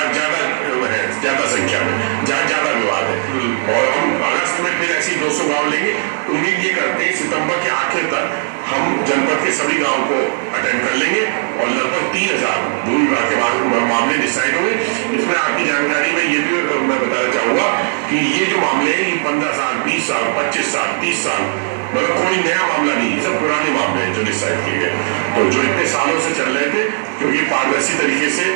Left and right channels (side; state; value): left; silent; digital silence